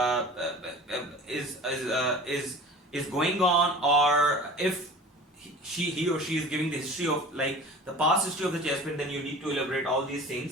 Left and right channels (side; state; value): both; normal; correlation 0.40